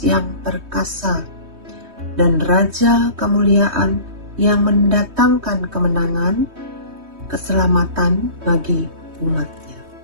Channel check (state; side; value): late; left; 3.2 ms